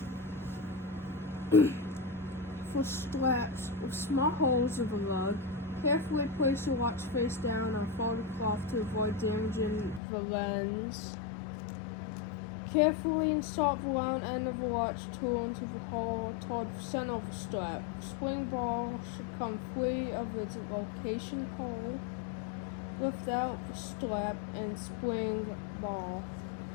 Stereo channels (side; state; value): right; drops out; at 10.0 s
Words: For straps with small holes in the lug, carefully place your watch face down on folded cloth to avoid damaging the lens. Carefully insert the round end of the watch tool into the hole toward the center of the strap. Spring ball should come free of its location hole. Lift out the strap and spring ball.